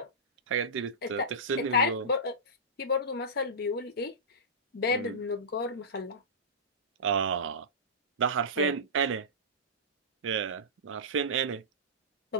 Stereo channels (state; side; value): normal; both; correlation -0.19